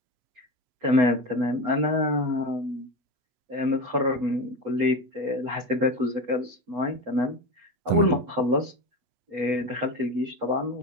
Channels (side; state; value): left; late; 8.1 ms